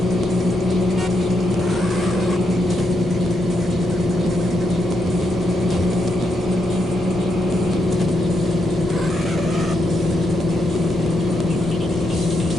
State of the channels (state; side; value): normal; both; correlation 0.80